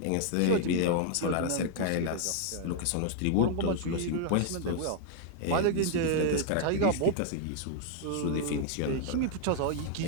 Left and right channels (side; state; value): both; different; correlation 0.00